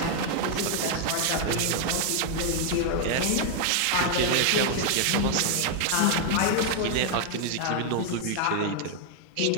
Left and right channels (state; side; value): different; both; correlation 0.00